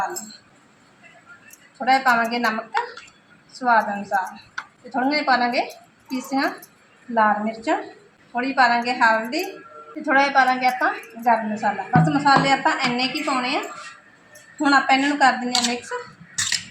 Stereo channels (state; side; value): identical; both; correlation 1.00